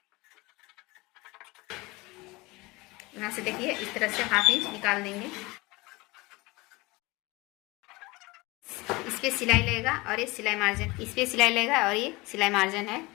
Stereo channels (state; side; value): quieter; right; 23.0 dB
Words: यहाँ से देखिए इस तरह से हाफ इंच निकाल देंगे। इस पे सिलाई लगेगा और ये सिलाई मार्जिन, इस पे सिलाई लगेगा और ये सिलाई मार्जिन है।